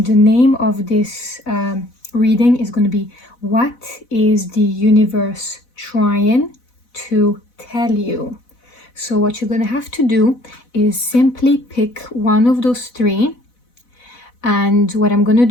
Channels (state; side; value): late; right; 4.0 ms